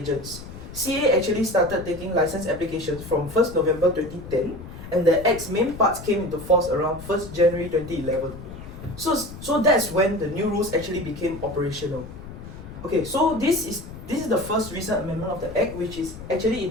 CEA actually started taking license applications from 1st November 2010, and the Act's main parts came into force around 1st January 2011. So that's when the new rules actually became operational. Okay, so this is the first recent amendment of the Act, which is actually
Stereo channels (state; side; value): noise; left; rumble, 13 dB below the sound